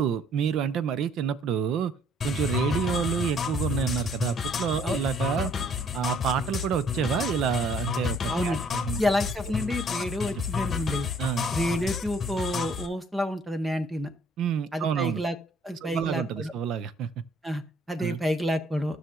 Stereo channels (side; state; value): both; normal; correlation 0.61